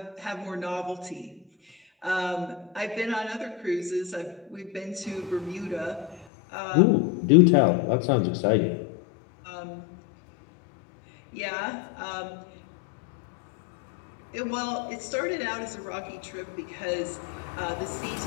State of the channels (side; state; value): right; drops out; at 6.2 s